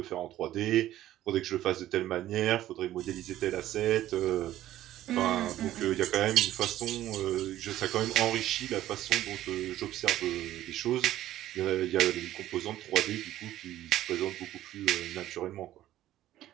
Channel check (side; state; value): left; quieter; 13.6 dB